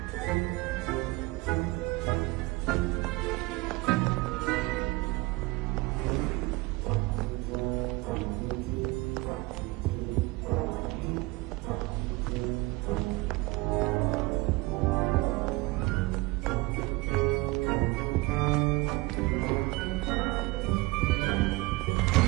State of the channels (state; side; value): quieter; left; 22.4 dB